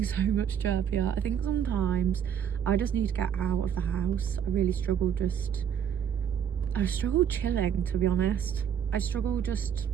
so much chirpier. I think sometimes I just need to get out of the house. I really struggle chilling, to be honest. I struggle just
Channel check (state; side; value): quieter; left; 8.6 dB